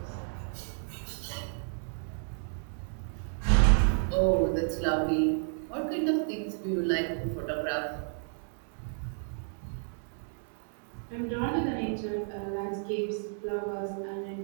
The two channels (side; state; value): left; silent; digital silence